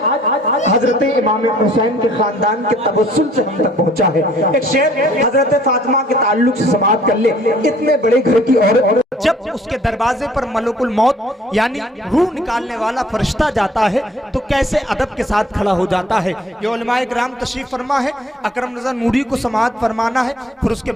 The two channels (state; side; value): normal; both; correlation 0.58